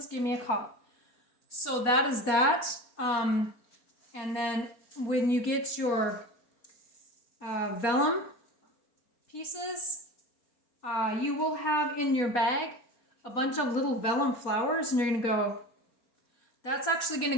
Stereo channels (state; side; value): late; right; 4.4 ms